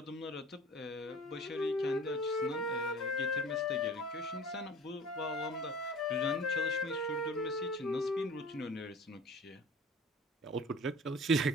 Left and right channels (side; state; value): both; normal; correlation 0.42